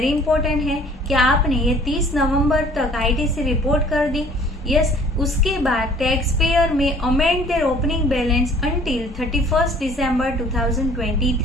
important है कि आपने ये 30 नवंबर तक आईटीसी रिपोर्ट कर दी। यस, उसके बाद टैक्स पेयर में amend their opening balance until 31 दिसंबर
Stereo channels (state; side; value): normal; both; correlation 0.53